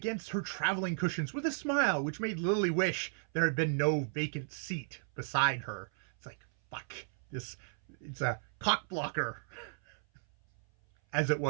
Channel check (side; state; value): left; silent; 55 dB below the other